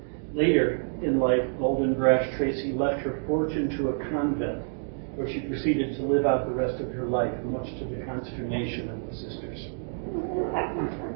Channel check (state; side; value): silent; left; digital silence